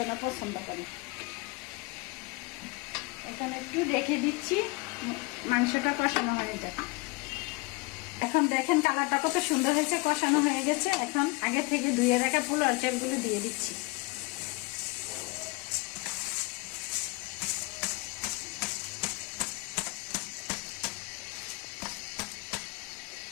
পছন্দ করে। এখানে একটু রেখে দিচ্ছি, মাংসটা কষানো হয়ে যাবে। এখন দেখেন কালারটা কত সুন্দর হয়েছে, কষানো হয়ে গেছে। এখন আগে থেকে ধুয়ে রাখা পোলার চালগুলো দিয়ে দিচ্ছি।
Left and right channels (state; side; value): quieter; right; 26.2 dB